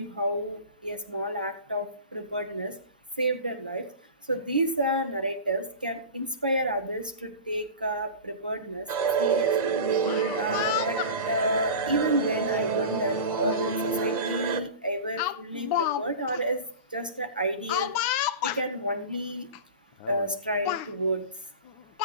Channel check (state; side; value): inverted; both; correlation -0.32